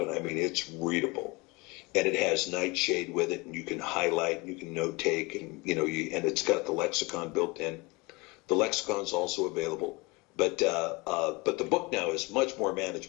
and I mean it's readable, and it has nightshade with it, and you can highlight, and you can note take, and and it's got the lexicon built in. The lexicon's also available. But the book now is much more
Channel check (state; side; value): quieter; right; 25.5 dB